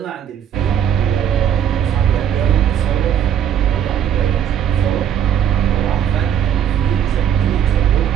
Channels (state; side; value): quieter; left; 9.1 dB